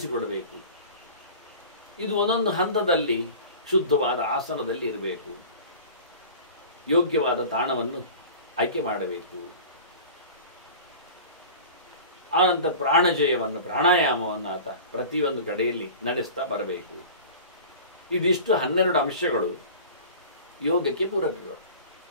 ಇದು ಒಂದೊಂದು ಹಂತದಲ್ಲಿ ಶುದ್ಧವಾದ ಆಸನದಲ್ಲಿ ಇರಬೇಕು. ಯೋಗ್ಯವಾದ ತಾಣವನ್ನು ಆಯ್ಕೆ ಮಾಡಬೇಕು. ಆನಂತರ ಪ್ರಾಣಜಯವನ್ನು, ಪ್ರಾಣಾಯಾಮವನ್ನು ಆತ ಪ್ರತಿಯೊಂದು ಕಡೆಯಲ್ಲಿ ನಡೆಸ್ತಾ ಬರಬೇಕು. ಇದಿಷ್ಟು 12 ಅಂಶಗಳು ಯೋಗಕ್ಕೆ ಪೂರಕಗಳು.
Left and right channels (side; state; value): both; inverted; correlation -0.39